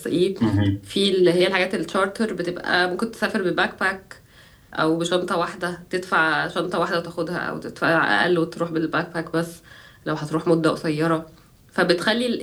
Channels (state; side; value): identical; both; correlation 1.00